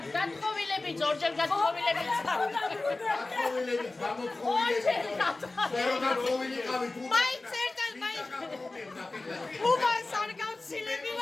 გათხოვილები ჯორჯერ გათხოვილები მაინც ერთად მაინც უბანს არ გავცილები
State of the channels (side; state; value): right; quieter; 3.2 dB